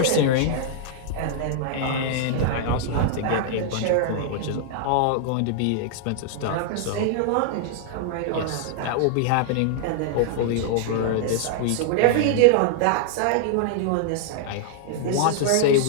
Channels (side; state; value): both; different; correlation -0.01